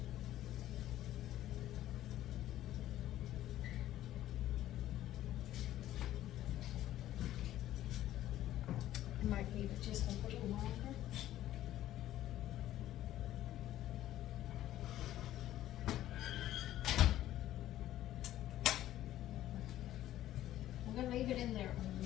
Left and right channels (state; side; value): quieter; right; 13.5 dB